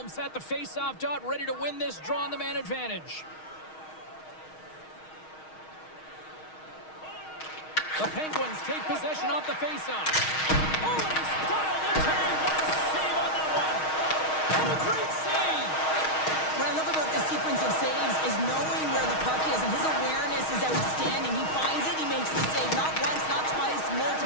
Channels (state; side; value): late; right; 6.4 ms